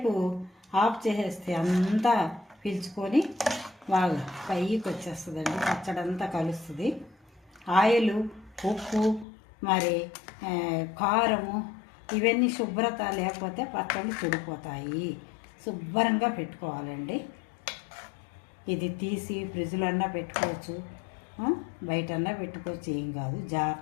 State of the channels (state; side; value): drops out; right; at 9.2 s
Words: ఆఫ్ చేసేస్తే అంతా పీల్చుకొని బాగా పైకి వచ్చేస్తుందండి. పచ్చడి అంతా కలుస్తుంది. ఆయిల్, ఉప్పు, మరి కారము ఇవన్నీ శుభ్రత లేకపోతే పచ్చళ్ళు చెడిపోతాయి. శుభ్రంగా పెట్టుకోవాలండి. ఇది తీసి ఫ్రిడ్జ్లో అన్నా పెట్టుకోవచ్చు, బయటన్నా పెట్టుకోవచ్చు, ఏం కాదు.